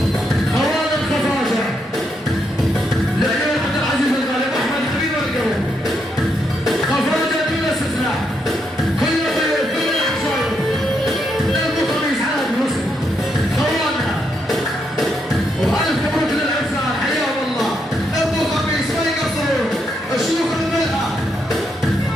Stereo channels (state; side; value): normal; both; correlation 0.79